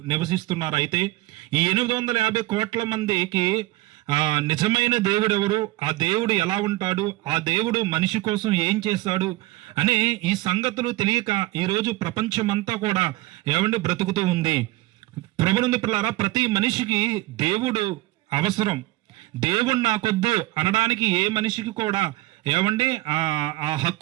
నివసిస్తున్నారు. అయితే ఈ 850 కోట్ల మందికి నిజమైన దేవుడు ఎవరు, ఆ దేవుడు ఎలా ఉంటాడు, ఆ దేవుడు మనిషి కోసం ఏం చేశాడు అనే ఈ సంగతులు తెలియక ఈరోజు ప్రపంచమంతా కూడా బ్రతుకుతూ ఉంది. ప్రభునందు పిల్లారా, ప్రతి మనిషికి దేవుడు అవసరం. దేవుడు నాకొద్దు అనడానికి ఏ మనిషికి కూడా ఆ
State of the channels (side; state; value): left; quieter; 19.0 dB